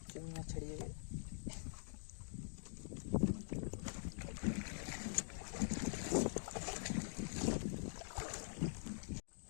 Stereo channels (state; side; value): silent; right; digital silence